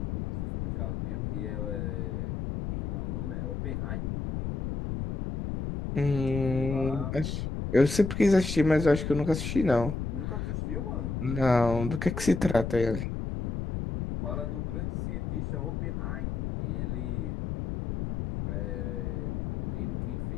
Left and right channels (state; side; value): noise; left; rumble, 3 dB below the sound